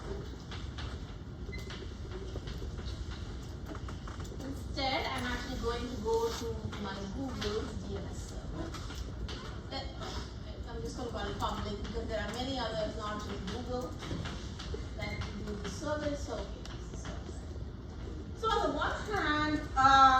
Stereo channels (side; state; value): both; identical; correlation 1.00